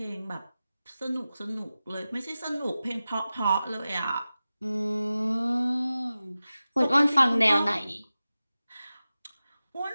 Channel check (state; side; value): inverted; both; correlation -0.95